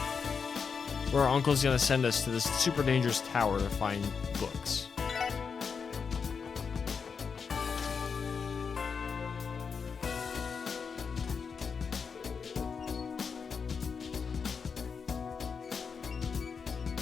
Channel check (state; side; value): quieter; right; 5.9 dB